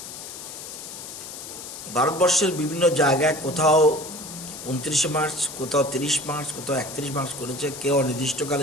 ভারতবর্ষের বিভিন্ন জায়গায় কোথাও 29 মার্চ, কোথাও 30 মার্চ, কোথাও 31 মার্চ করেছে, কেউ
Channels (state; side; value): noise; left; hiss, 11 dB below the sound